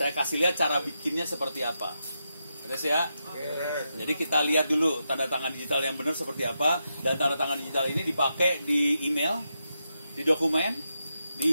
kasih lihat cara bikinnya seperti apa. Terus ya. Jadi kita lihat dulu tanda tangan digital yang benar seperti apa. Dan tanda tangan digital ini dipakai di email, di dokumen,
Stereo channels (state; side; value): inverted; both; correlation -0.86